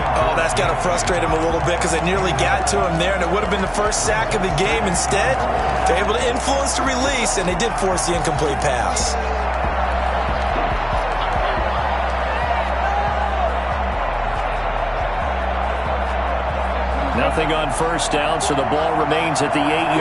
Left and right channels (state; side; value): identical; both; correlation 1.00